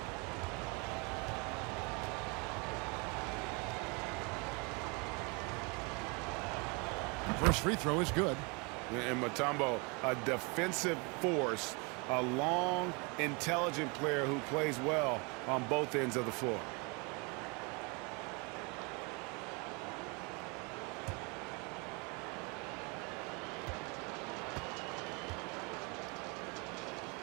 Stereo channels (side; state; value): left; quieter; 30.7 dB